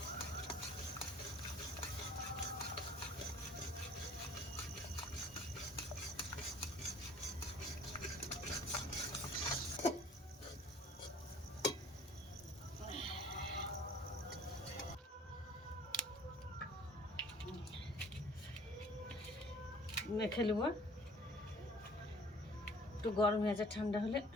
মেখে নেব। একটু গরম হয়েছে, ঠান্ডা হলে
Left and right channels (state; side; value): normal; both; correlation 0.52